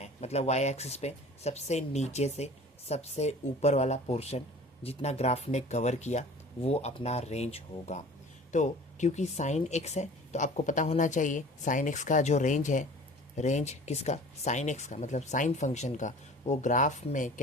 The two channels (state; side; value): normal; both; correlation 0.43